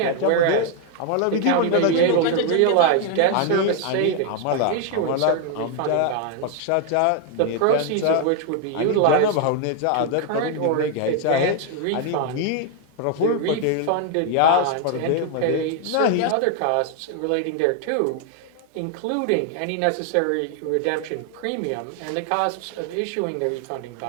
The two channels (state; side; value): different; both; correlation 0.01